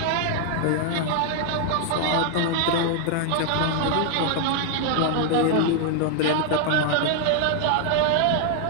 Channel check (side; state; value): both; different; correlation 0.00